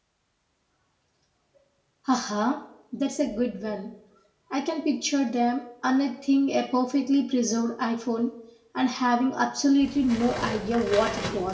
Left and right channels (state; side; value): identical; both; correlation 1.00